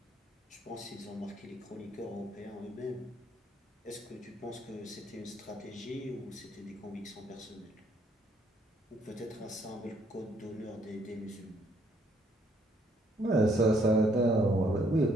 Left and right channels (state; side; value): normal; both; correlation 0.68